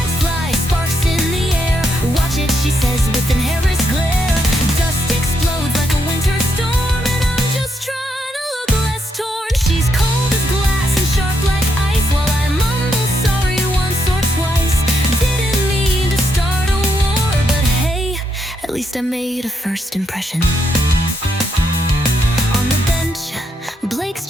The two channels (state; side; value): normal; both; correlation 0.79